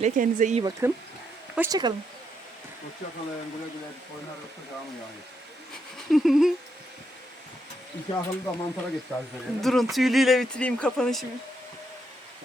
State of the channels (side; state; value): both; normal; correlation 0.79